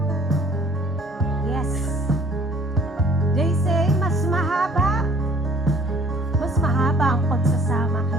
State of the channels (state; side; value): normal; both; correlation 0.55